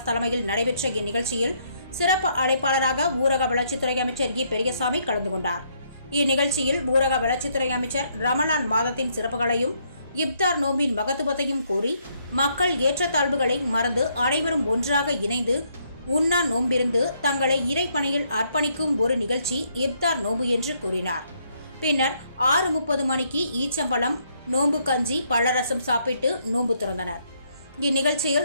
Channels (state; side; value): inverted; both; correlation -0.72